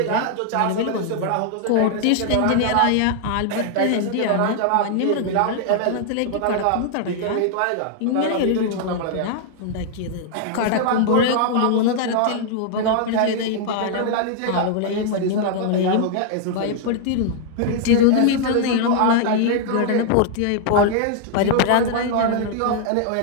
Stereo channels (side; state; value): both; different; correlation -0.01